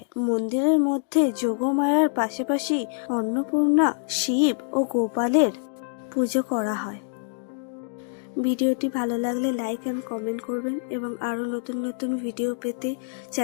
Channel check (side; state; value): right; silent; digital silence